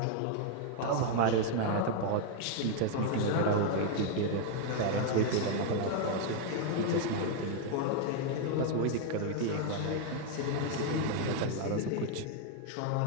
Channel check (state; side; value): different; both; correlation 0.00